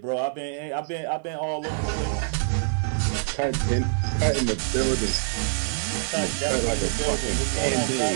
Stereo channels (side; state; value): left; silent; 61 dB below the other